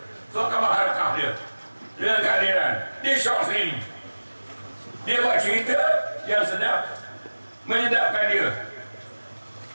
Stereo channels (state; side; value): inverted; both; correlation -1.00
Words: surat khabar harakah dia dengan keadilan. Dia syok sendiri. Dia buat cerita yang sedap, menyedapkan dia.